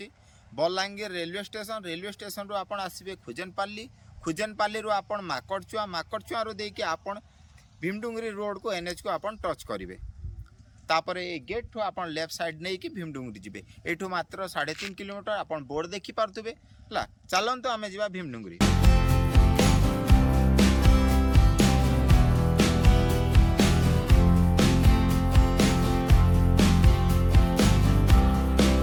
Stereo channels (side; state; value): both; identical; correlation 1.00